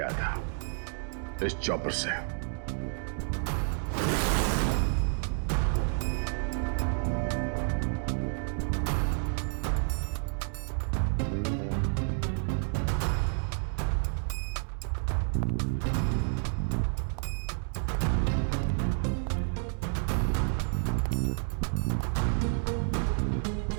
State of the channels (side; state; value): left; silent; 58 dB below the other